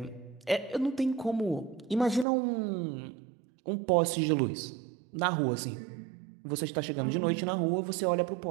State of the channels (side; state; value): left; drops out; at 2.2 s